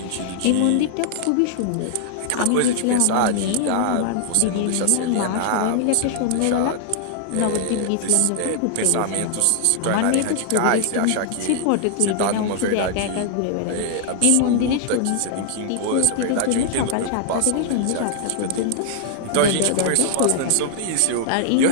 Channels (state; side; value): different; both; correlation 0.00